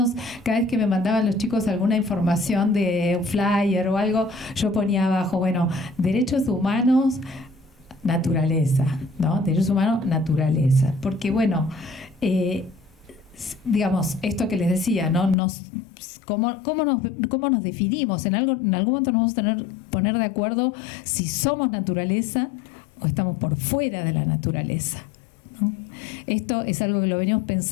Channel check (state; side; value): drops out; right; at 15.4 s